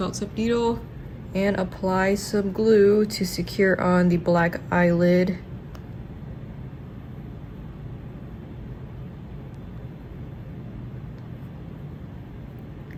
tip needle and apply some glue to secure on the black eyelid.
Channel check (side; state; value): both; identical; correlation 1.00